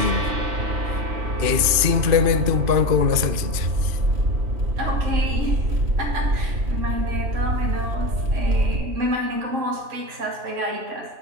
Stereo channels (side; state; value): left; late; 2.5 ms